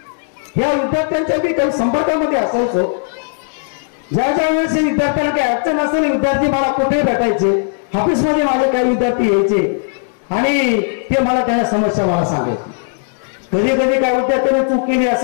या विद्यार्थ्यांच्या बी काही संपर्कामध्ये असायचो. ज्या वेळेस विद्यार्थ्यांना काही अडचण असेल विद्यार्थी मला कुठे भेटायचे, ऑफिसमध्ये माझे काही विद्यार्थी यायचे आणि ते मला त्या समस्या मला सांगायचे. कधी कधी काय विद्यार्थ्याने चूक केली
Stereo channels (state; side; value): silent; right; digital silence